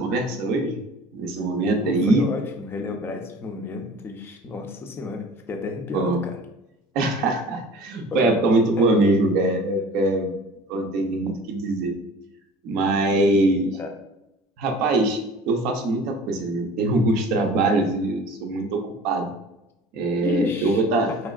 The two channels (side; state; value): both; normal; correlation 0.44